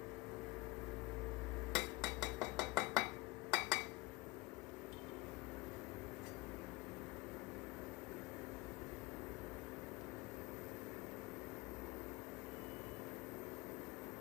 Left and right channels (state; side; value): quieter; right; 22.7 dB